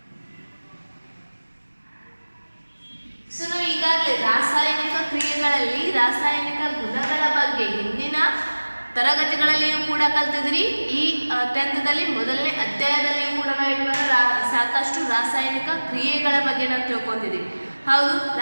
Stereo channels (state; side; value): inverted; both; correlation -1.00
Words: ಸೊ ನಾವು ಈಗಾಗಲೇ ರಾಸಾಯನಿಕ ಕ್ರಿಯೆಗಳಲ್ಲಿ ರಾಸಾಯನಿಕ ಗುಣಗಳ ಬಗ್ಗೆ ಹಿಂದಿನ ತರಗತಿಗಳಲ್ಲಿಯೂ ಕೂಡ ಕಲ್ತಿದ್ರಿ. ಈ 10th ಮೊದಲನೇ ಅಧ್ಯಾಯದಲ್ಲಿಯೂ ಕೂಡ ನಾವು ಸಾಕಷ್ಟು ರಾಸಾಯನಿಕ ಕ್ರಿಯೆಗಳ ಬಗ್ಗೆ ನಾವು ತಿಳ್ಕೊಂಡಿದ್ದೀವಿ, ಹೌದು.